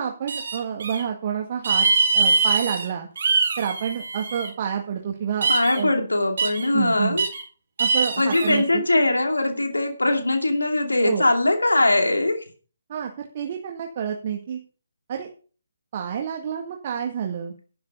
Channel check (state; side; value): inverted; both; correlation -0.85